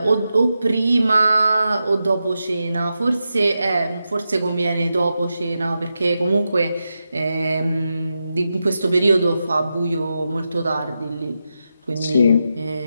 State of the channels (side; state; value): both; inverted; correlation -0.89